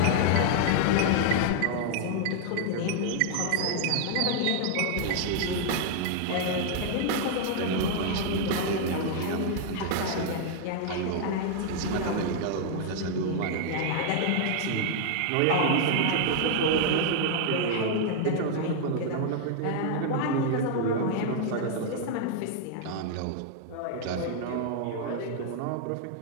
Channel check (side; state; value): both; different; correlation 0.00